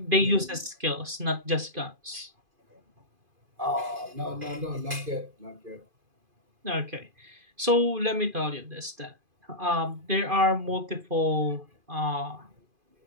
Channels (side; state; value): left; late; 2.5 ms